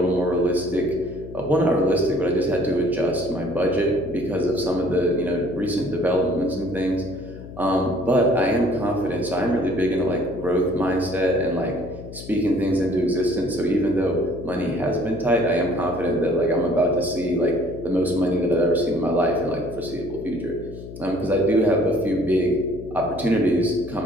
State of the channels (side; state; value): left; noise; hum, 13 dB below the sound